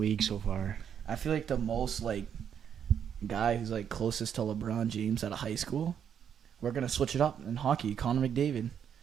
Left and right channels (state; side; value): quieter; left; 8.4 dB